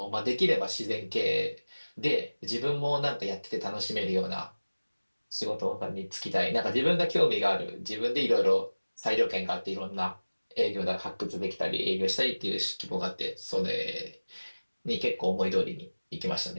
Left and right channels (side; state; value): both; inverted; correlation -1.00